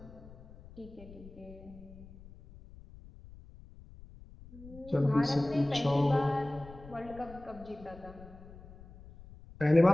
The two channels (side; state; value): left; noise; rumble, 19 dB below the sound